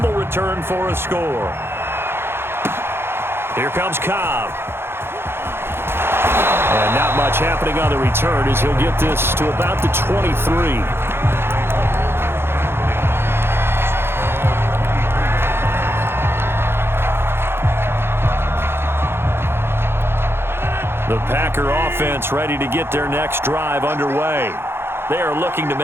return for a score. Here comes Cobb. And not much happening on the return as he'll get this to about the 23. The Packer offense ready to get their next drive underway. They are looking to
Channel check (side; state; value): left; late; 0.11 ms